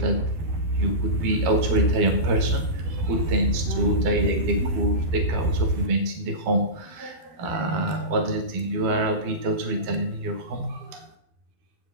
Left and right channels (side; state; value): left; late; 12 ms